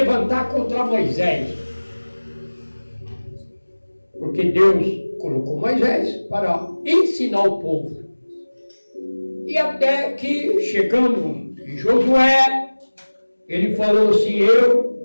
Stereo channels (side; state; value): both; inverted; correlation -1.00